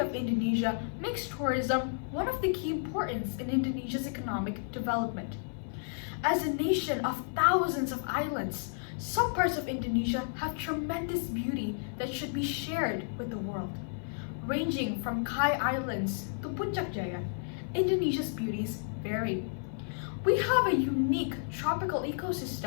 of Indonesia makes tourism one of the key importance in Indonesia's economic development. As a nation of thousands of islands, some parts of Indonesia have tremendous beauty that should be shared with the world. Ranging from Kai Islands to Puncak Jaya, Indonesia's beauties vary. We have a unique tropical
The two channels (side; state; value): right; silent; 56 dB below the other